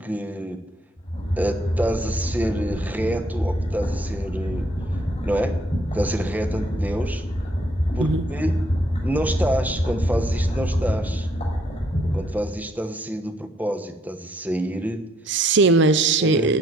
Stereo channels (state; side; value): normal; both; correlation 0.68